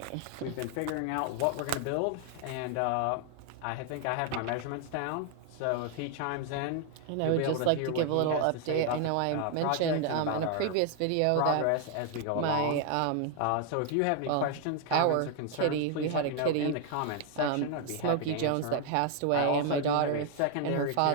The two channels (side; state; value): both; different; correlation 0.00